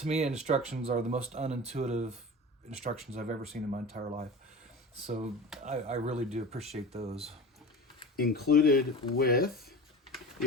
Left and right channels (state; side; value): normal; both; correlation 0.32